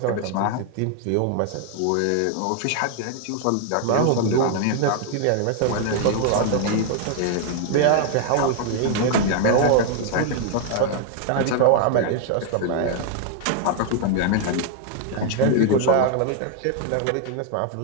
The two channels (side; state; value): both; different; correlation 0.00